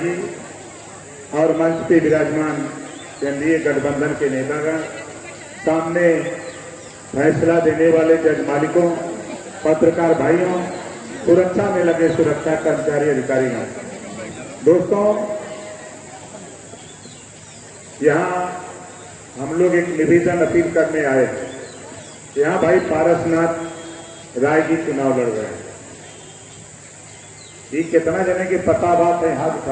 जी और मंच पे विराजमान केंद्रीय गठबंधन के नेतागण, सामने फैसला देने वाले जज मालिकों, पत्रकार भाइयों, सुरक्षा में लगे सुरक्षा कर्मचारी अधिकारियों, दोस्तों, यहाँ हम लोग एक निवेदन अपील करने आए। यहाँ भाई पारसनाथ राय जी चुनाव लड़ रहे हैं। ये कितना जने की पता बात है, हाथ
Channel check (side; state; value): both; identical; correlation 1.00